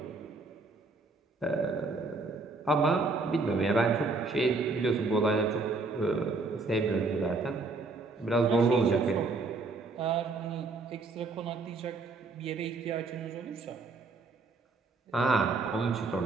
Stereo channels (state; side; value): quieter; left; 3.7 dB